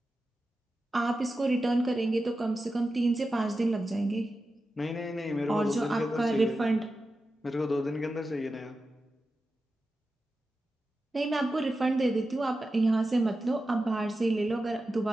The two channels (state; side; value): normal; both; correlation 0.92